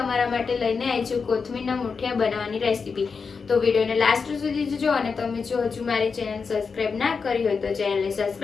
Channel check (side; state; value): right; quieter; 5.3 dB